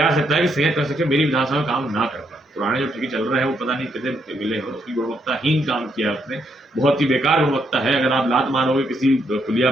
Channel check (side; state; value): both; normal; correlation 0.75